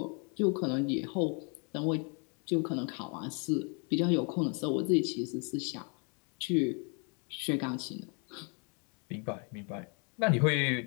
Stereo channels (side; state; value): right; quieter; 36.1 dB